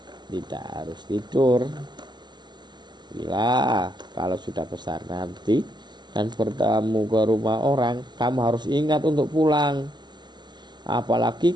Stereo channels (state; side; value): late; left; 0.21 ms